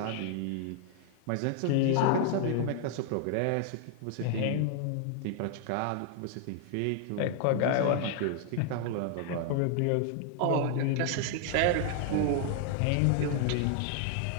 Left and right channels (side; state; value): both; different; correlation 0.00